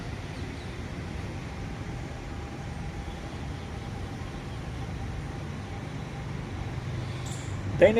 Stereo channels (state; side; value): identical; both; correlation 1.00